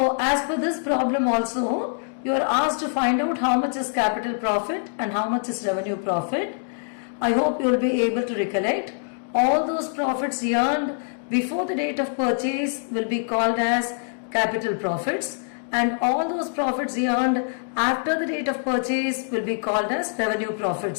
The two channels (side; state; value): right; silent; digital silence